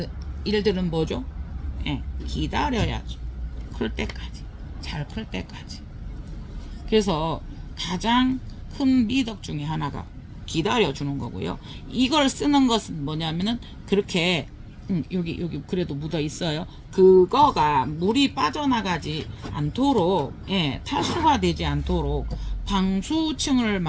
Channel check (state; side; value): identical; both; correlation 1.00